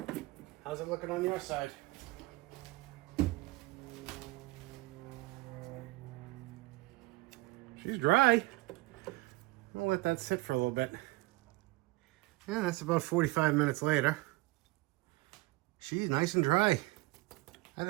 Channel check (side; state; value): left; quieter; 21.2 dB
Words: How's it looking on your side? She's dry. I'll let that sit for a little bit. Yeah, that's about 45 minutes later. She's nice and dry. I